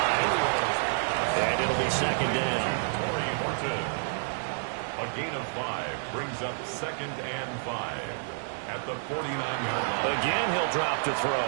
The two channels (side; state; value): left; silent; digital silence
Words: and it'll be 2nd down. A gain of 5 brings up 2nd and 5 at the 49-yard line. Again, he'll drop to